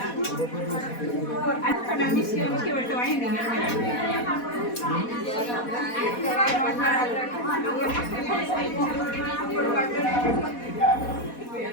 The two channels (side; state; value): right; late; 4.1 ms